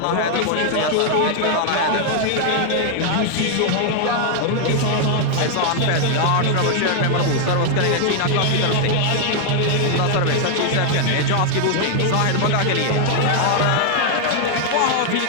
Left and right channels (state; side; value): different; both; correlation 0.00